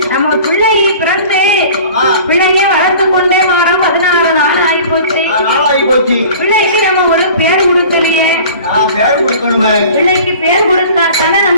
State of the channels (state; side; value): inverted; both; correlation -0.44